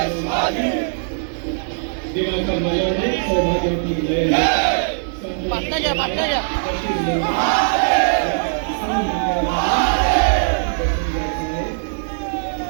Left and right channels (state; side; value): silent; left; digital silence